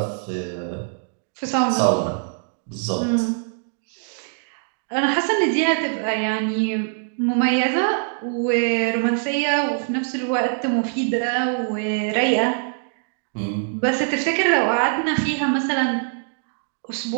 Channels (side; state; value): left; silent; digital silence